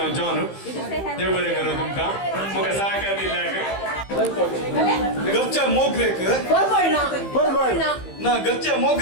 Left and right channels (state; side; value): late; right; 15 ms